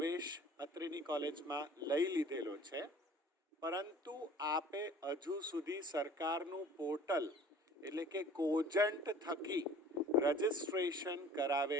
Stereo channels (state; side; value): normal; both; correlation 0.48